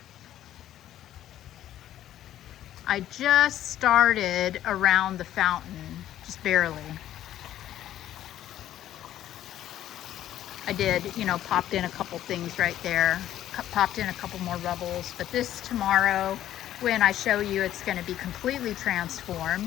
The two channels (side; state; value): right; quieter; 12.3 dB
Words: I just started around the fountain, just barely. I did, you know, popped in a couple things right there, popped in a couple more rubbles, but this tomorrow, when I show you, it's going to be completely